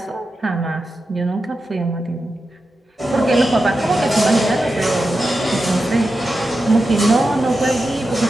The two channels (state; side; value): normal; both; correlation 0.90